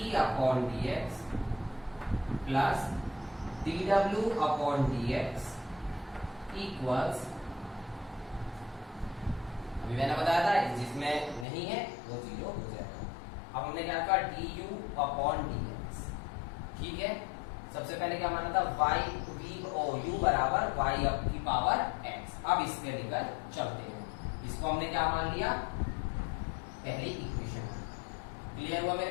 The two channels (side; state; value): right; drops out; at 11.5 s